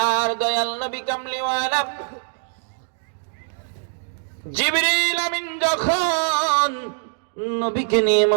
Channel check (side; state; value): left; silent; digital silence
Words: দয়াল নবী কামলিওয়ালা জিবরিল আমিন যখন নবীকে নিয়ে